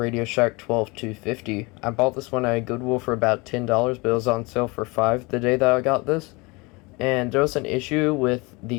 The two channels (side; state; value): right; quieter; 26.1 dB